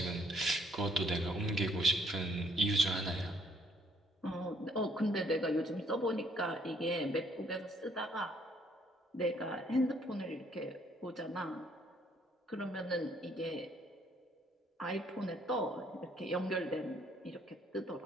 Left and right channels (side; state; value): both; normal; correlation 0.65